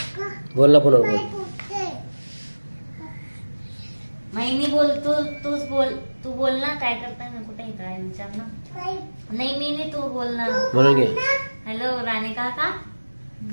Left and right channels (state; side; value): inverted; both; correlation -1.00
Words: बोल ना फोनवर बोल. मी बोल, तूच बोल. तू बोल ना, काय करताय ना, कुठे काय विचार ना. नाही मी नाही, तू बोल ना. म्हणून घे. हॅलो राणी काका.